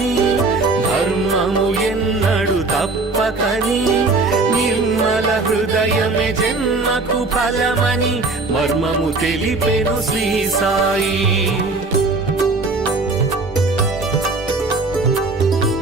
ధర్మము ఎన్నడు తప్పకని, నిర్మల హృదయమే జన్మకు ఫలమని మర్మము తెలిపెను శ్రీ సాయి.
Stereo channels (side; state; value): left; quieter; 3.6 dB